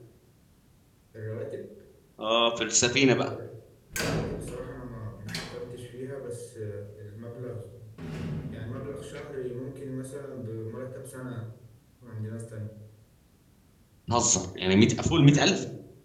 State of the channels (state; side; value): identical; both; correlation 1.00